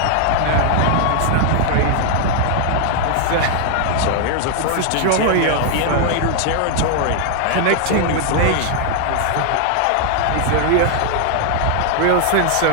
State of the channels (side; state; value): both; different; correlation 0.00